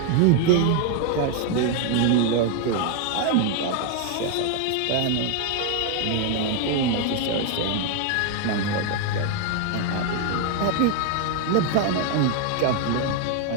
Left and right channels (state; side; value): different; both; correlation 0.00